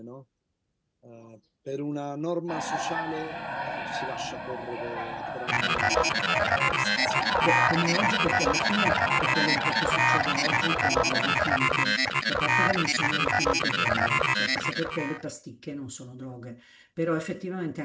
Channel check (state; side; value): identical; both; correlation 1.00